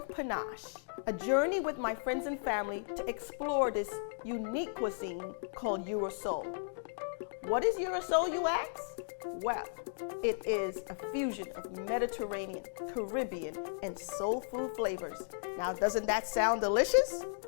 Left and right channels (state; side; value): silent; right; digital silence